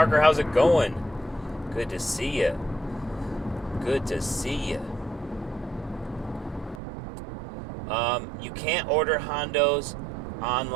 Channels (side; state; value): left; drops out; at 6.8 s